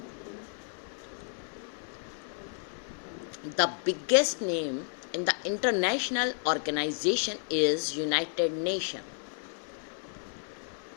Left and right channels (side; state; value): right; silent; digital silence